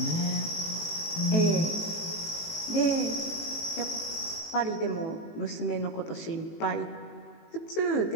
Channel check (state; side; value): late; right; 18 ms